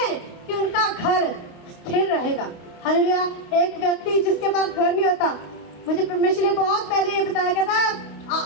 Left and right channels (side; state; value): right; late; 29 ms